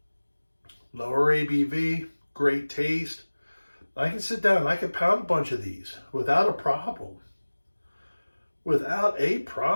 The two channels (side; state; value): both; inverted; correlation -1.00